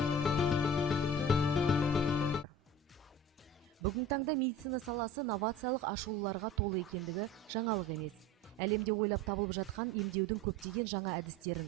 Бүгін таңда медицина саласы новациялық ашылуларға толы екендігі жаңалық емес. Әлемде ойлап табылып жатқан емдеудің көптеген жаңа әдістерін,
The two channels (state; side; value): normal; both; correlation 0.39